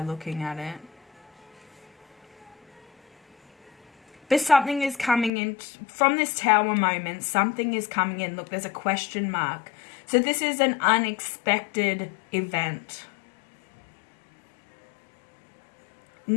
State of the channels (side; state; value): right; drops out; at 5.3 s